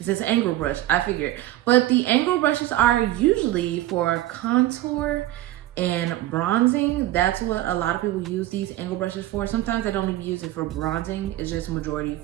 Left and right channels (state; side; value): quieter; left; 15.2 dB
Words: says angle brush, I figured. But the angle brushes are usually for contour and bronzing. That's what a lot of people use these angle brushes for. Sometimes I don't even use it for bronzing. It's just majority